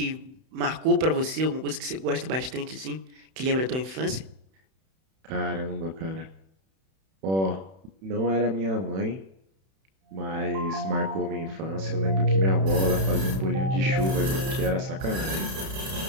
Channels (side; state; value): left; late; 31 ms